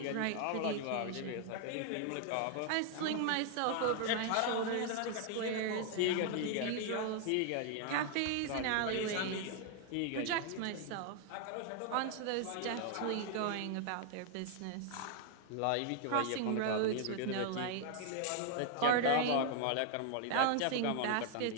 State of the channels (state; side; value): different; both; correlation 0.00